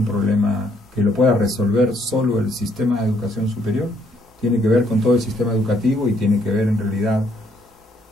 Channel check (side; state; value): both; normal; correlation 0.68